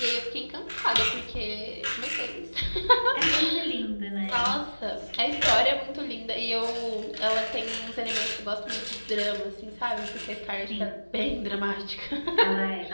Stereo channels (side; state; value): both; inverted; correlation -1.00